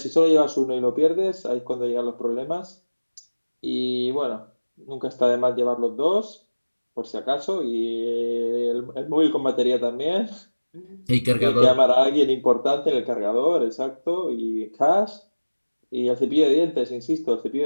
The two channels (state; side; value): inverted; both; correlation -1.00